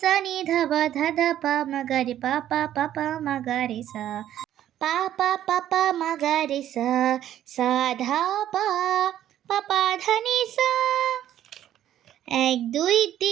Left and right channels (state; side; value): quieter; left; 11.7 dB